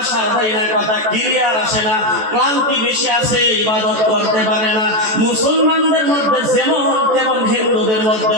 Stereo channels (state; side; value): late; left; 14 ms